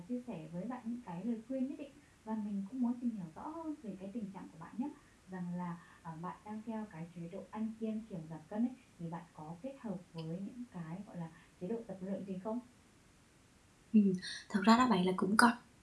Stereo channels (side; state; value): both; identical; correlation 1.00